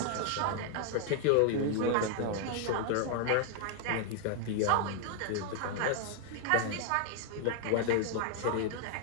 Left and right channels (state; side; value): different; both; correlation 0.00